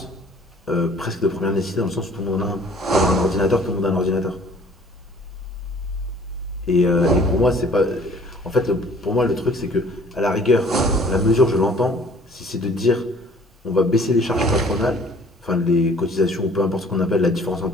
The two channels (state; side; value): normal; both; correlation 0.54